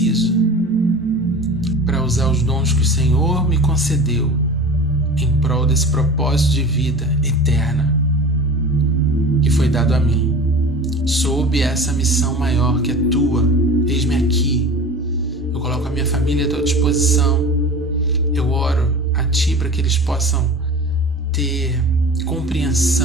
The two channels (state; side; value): normal; both; correlation 0.37